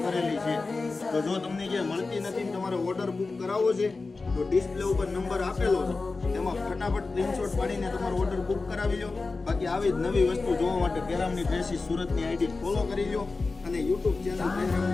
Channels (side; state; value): right; quieter; 3.8 dB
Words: કરેલી છે. તો જો તમને જે મળતી નથી તમારે ઓર્ડર બુક કરાવવો છે તો ડિસ્પ્લે ઉપર નંબર આપેલો છે, તેમાં ફટાફટ સ્ક્રીનશોટ પાડીને તમારો ઓર્ડર બુક કરાવી લો. બાકી આવી જ નવી વસ્તુ જોવા માટે પહેરામની ડ્રેસીસ સુરતની આઈડી ફોલો કરી લો અને યુટ્યુબ ચેનલ